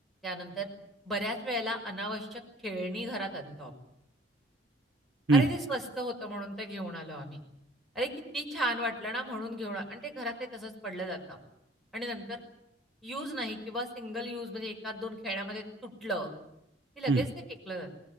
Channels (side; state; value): both; normal; correlation 0.52